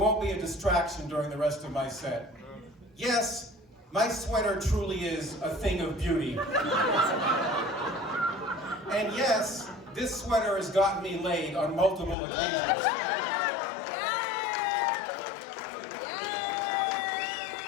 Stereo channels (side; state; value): right; drops out; at 12.2 s